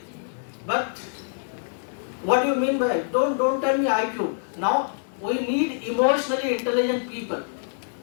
but what do you mean by it? Don't tell me IQ. Now we need emotionally intelligent people.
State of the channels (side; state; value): right; silent; digital silence